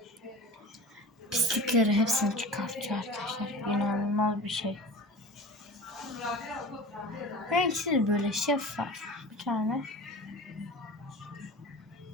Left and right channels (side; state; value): both; normal; correlation 0.35